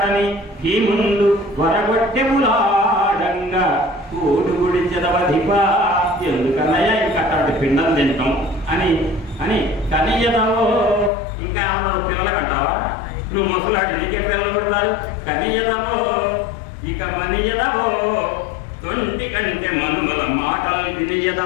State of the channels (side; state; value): right; drops out; at 11.1 s